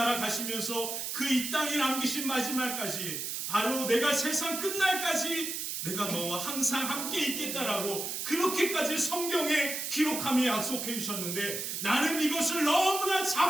가시면서 그 이 땅에 남기신 마지막까지 바로 내가 세상 끝날까지 내가 너와 항상 함께 있겠다라고 그렇게까지 성경에 기록하며 약속해 주셨는데 나는 이것을 너무나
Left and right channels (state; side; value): noise; right; hiss, 4 dB below the sound